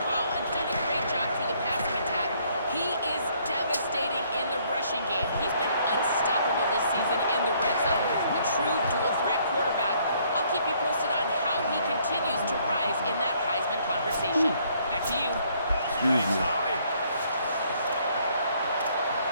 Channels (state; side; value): inverted; both; correlation -0.65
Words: ball and done a great job through the passing attack, he is devastating in the rushing game. He's been unstoppable this season in the red zone, a true dual-threat quarterback. I'll keep you posted on how he continues to rise in that Heisman conversation. Back to you. Thanks, Holly.